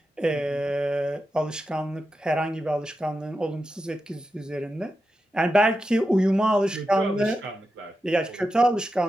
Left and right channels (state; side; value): normal; both; correlation 0.90